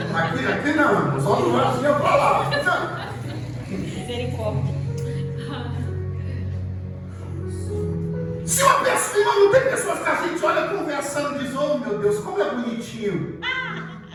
Aqui não. Só não vai assim a palavra. Não. Misericórdia. Se uma pessoa, não tem pessoas que a gente olha conversando e diz, oh meu Deus, como é bonitinho.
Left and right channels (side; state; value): both; identical; correlation 1.00